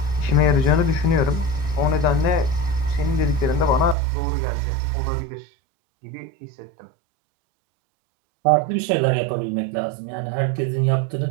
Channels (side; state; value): left; drops out; at 4.0 s